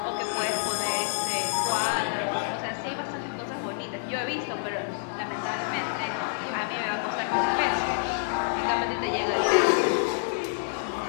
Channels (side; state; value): right; silent; digital silence